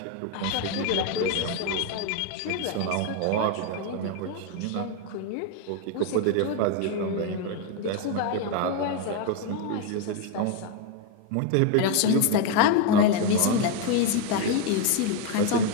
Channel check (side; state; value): both; different; correlation 0.01